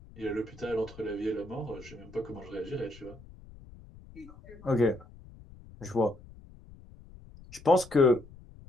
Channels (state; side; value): noise; left; rumble, 20 dB below the sound